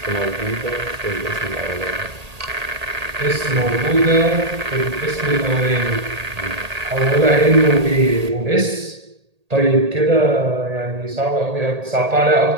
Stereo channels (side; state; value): left; late; 1.8 ms